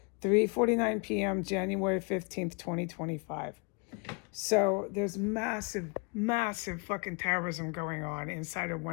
3:49 p.m., January 15th, 2025. So there's massive fucking terrorism going on inside of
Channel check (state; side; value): quieter; right; 33.2 dB